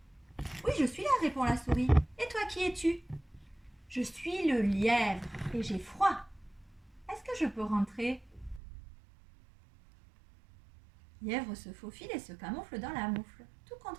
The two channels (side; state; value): left; drops out; at 8.6 s